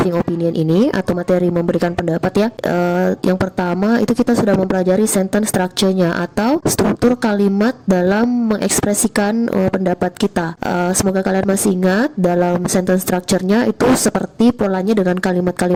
opinion ini atau materi memberikan pendapat ya. Yang pertama itu kita sudah mempelajari sentence structure-nya atau struktur kalimat dalam mengekspresikan pendapat kita. Semoga kalian masih ingat dalam sentence structure-nya itu seperti polanya dengan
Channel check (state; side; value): identical; both; correlation 1.00